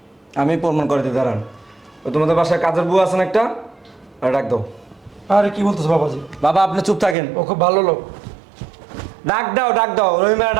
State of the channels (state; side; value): drops out; left; at 7.2 s